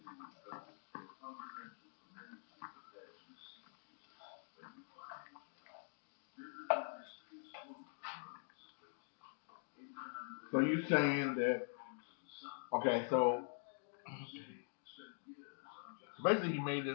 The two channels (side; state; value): right; silent; digital silence